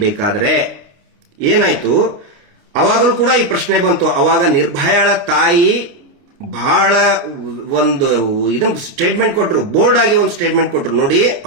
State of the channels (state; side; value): late; left; 29 ms